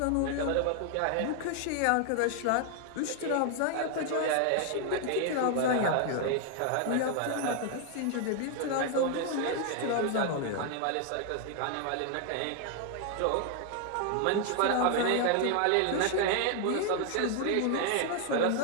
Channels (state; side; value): different; both; correlation 0.00